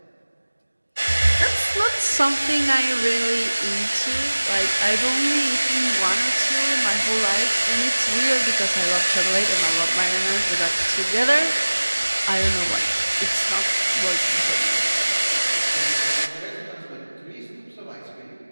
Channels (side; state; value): both; inverted; correlation -1.00